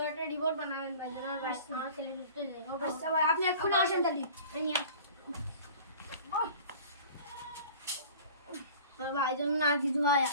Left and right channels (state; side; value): inverted; both; correlation -0.43